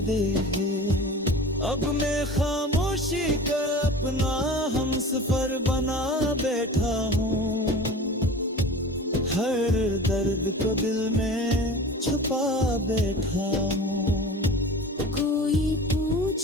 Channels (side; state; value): both; normal; correlation 0.37